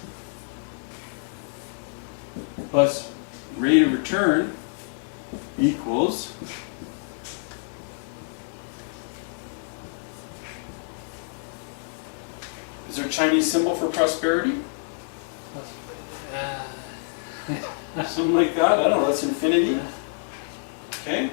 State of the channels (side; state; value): right; silent; digital silence